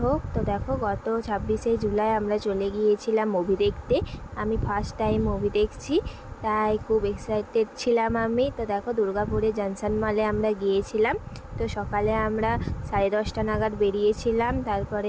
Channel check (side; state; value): both; identical; correlation 1.00